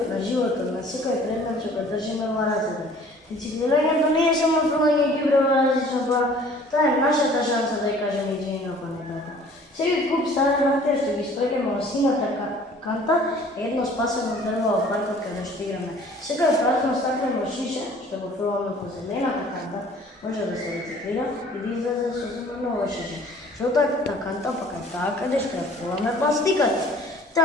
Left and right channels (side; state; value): both; normal; correlation 0.51